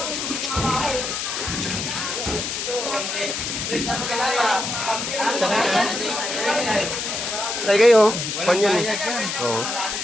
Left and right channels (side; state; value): left; noise; hiss, 3 dB below the sound